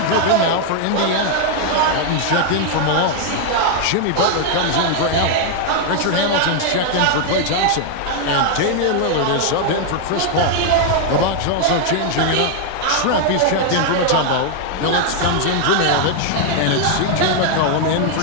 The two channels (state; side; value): different; both; correlation 0.00